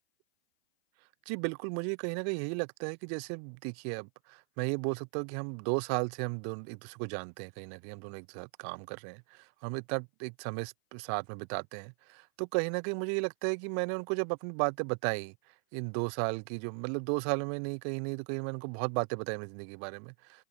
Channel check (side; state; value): left; silent; 53 dB below the other